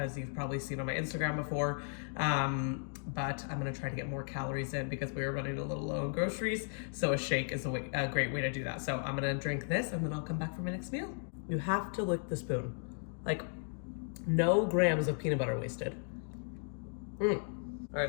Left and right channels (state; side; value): silent; right; 54 dB below the other